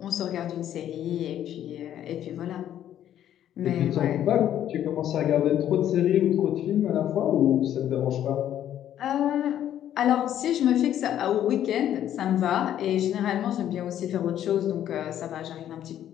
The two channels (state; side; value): quieter; right; 11.0 dB